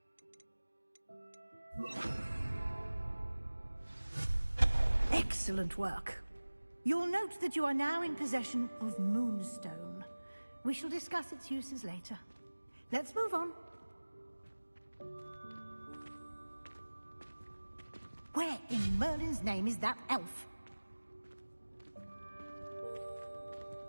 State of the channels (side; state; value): both; inverted; correlation -1.00